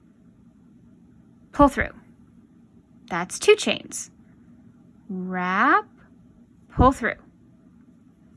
pull through. That's 2 chains. Wrap, pull through.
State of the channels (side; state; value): both; identical; correlation 1.00